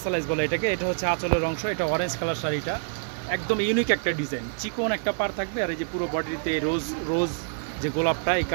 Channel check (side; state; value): left; silent; 61 dB below the other